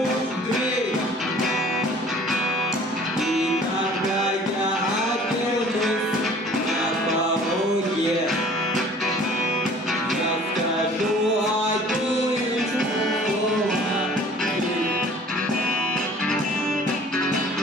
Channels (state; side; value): normal; both; correlation 0.51